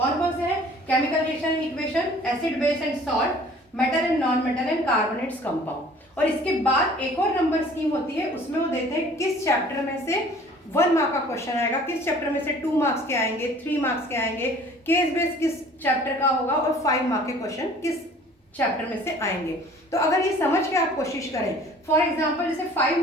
कौन से हैं? Chemical reaction and equation, acid base and salt, metal and non metal and carbonates compound. और इसके बाद एक और नंबर स्कीम होती है, उसमें वो देते हैं किस चैप्टर में से 1 मार्क का क्वेश्चन आएगा, किस चैप्टर में से 2 मार्क्स के आएंगे, 3 मार्क्स के आएंगे, केस बेस किस चैप्टर का होगा और 5 मार्क के क्वेश्चन किस चैप्टर में से आएंगे। तो अगर ये समझ के आप कोशिश करें, फॉर एग्जांपल जैसे 5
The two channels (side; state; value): both; normal; correlation 0.51